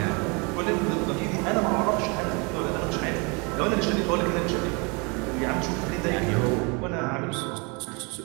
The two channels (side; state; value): left; quieter; 30.8 dB